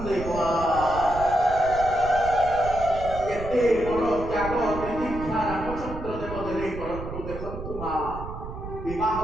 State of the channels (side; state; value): right; noise; rumble, 9 dB below the sound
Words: କେତେ ବଡ଼ ତ୍ୟାଗ ତିତିକ୍ଷା ରାମଚନ୍ଦ୍ର ଦେବ ଦେଲେ କରନ୍ତୁ। ଦେଖନ୍ତୁ ମା ବିବାହ